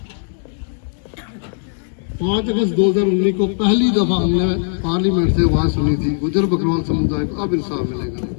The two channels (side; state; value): right; silent; digital silence